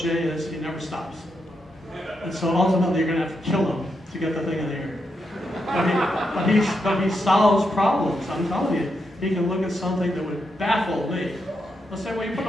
Jay is he never stops. And so ultimately you're going to have to kill him to get the thing in the air. But he solves problems. I'm telling you, he can look at something that would baffle me. He'll say, well, you put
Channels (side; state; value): both; normal; correlation 0.83